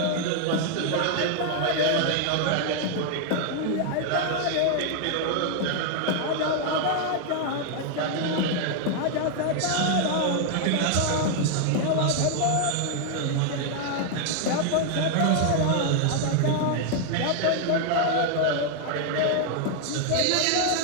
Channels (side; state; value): both; different; correlation 0.00